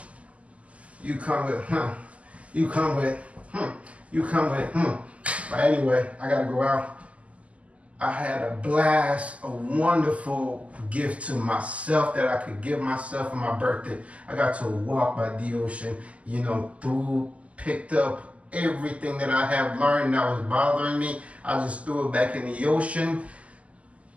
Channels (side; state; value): left; late; 0.066 ms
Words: You come with, You come with, You come with, But anyway, I got to go out. I had a blast, a wonderful gift to myself that I could give myself for my birthday. I got to walk by the ocean, picked up everything that I have learned that was bothering me. I just threw it back in the ocean,